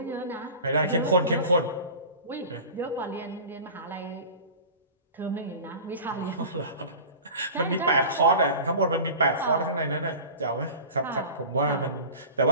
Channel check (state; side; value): inverted; both; correlation -0.37